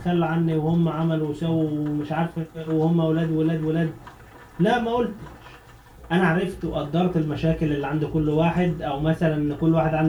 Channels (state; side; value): identical; both; correlation 1.00